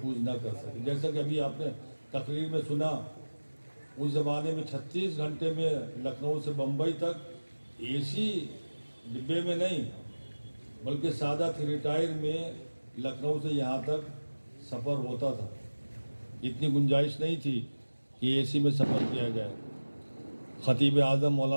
نہ کر سکے. جیسا کہ ابھی آپ نے تقریر میں سنا، اس زمانے میں 36 گھنٹے میں لکھنؤ سے بمبئی تک اے سی ڈبے میں نہیں بلکہ سادہ 3 ٹائر میں لکھنؤ سے یہاں تک سفر ہوتا تھا. اتنی گنجائش نہیں تھی کہ اے سی میں سفر کیا جائے. خطیب اعظم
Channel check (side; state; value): both; inverted; correlation -1.00